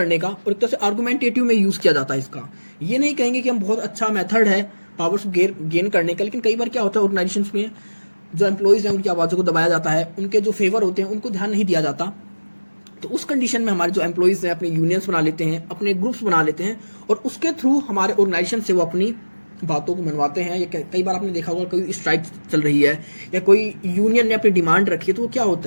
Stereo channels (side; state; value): both; inverted; correlation -1.00